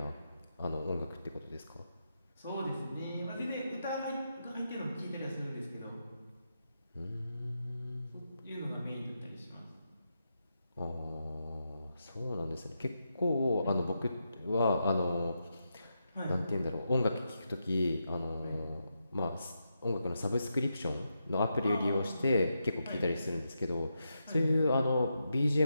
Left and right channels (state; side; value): inverted; both; correlation -0.85